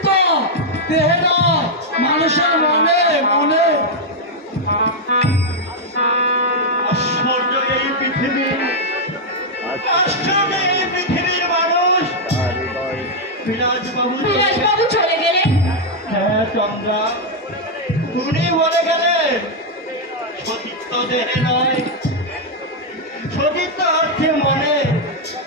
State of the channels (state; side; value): normal; both; correlation -0.02